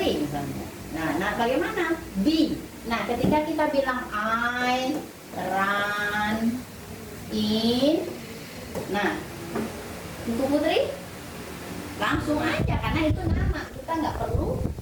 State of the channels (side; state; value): both; identical; correlation 1.00